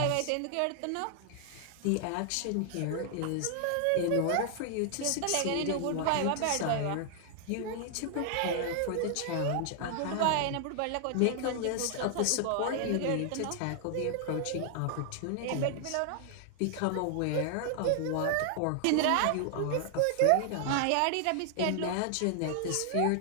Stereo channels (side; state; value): both; different; correlation 0.00